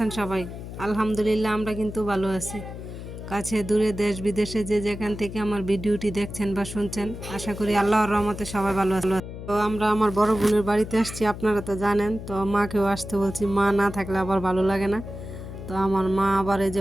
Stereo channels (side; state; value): left; noise; hum, 10 dB below the sound